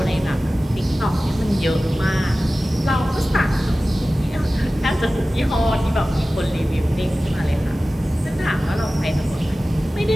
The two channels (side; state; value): both; normal; correlation 0.96